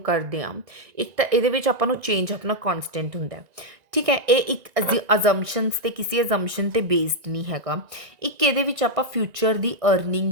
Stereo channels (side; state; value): left; late; 1.9 ms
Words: ਕਰਦੇ ਹਾਂ? ਇੱਕ ਤਾਂ ਇਹਦੇ ਵਿੱਚ ਆਪਾਂ ਨੂੰ ਚੇਂਜ ਆਪਣਾ ਕਨਸਟੈਂਟ ਹੁੰਦਾ, ਠੀਕ ਹੈ। ਇਹ ਇੱਕ ਅਜ਼ੰਪਸ਼ਨਸ ਤੇ ਕਿਸੇ ਅਜ਼ੰਪਸ਼ਨ ਤੇ ਬੇਸਡ ਨਹੀਂ ਹੈਗਾ। ਇੱਕ ਇਹਦੇ ਵਿੱਚ ਆਪਾਂ ਫਿਊਚਰ ਦੀ